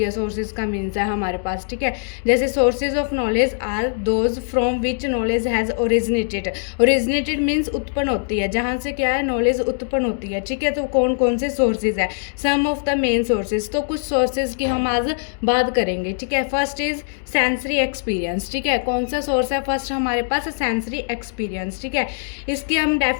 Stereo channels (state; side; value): silent; right; digital silence